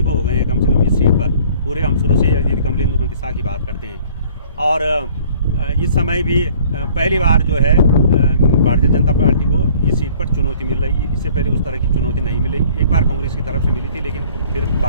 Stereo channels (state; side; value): inverted; both; correlation -0.53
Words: को हो गए हैं कम से कम इस सीट पर। पूरे हम शुरू से यदि कमलेंदु प्रतिष्ठा की बात करते हैं, और इस समय भी पहली बार जो है भारतीय जनता पार्टी को इस सीट पर चुनौती मिल रही है। इससे पहले उस तरह की चुनौती नहीं मिली। एक बार कांग्रेस की तरफ से मिली थी, लेकिन फिर